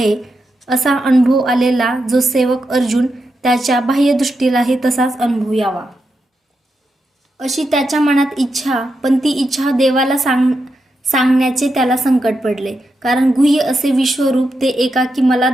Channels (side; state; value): both; normal; correlation 0.86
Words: असा अनुभव आलेला जो सेवक अर्जुन, त्याच्या बाह्यदृष्टीलाही तसाच अनुभव यावा. अशी त्याच्या मनात इच्छा, पण ती इच्छा देवाला सांगण्याचे त्याला संकट पडले. कारण गुह्य असे विश्वरूप ते एकाकी मला